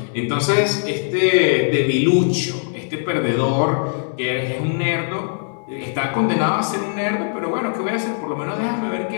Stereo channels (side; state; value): right; silent; digital silence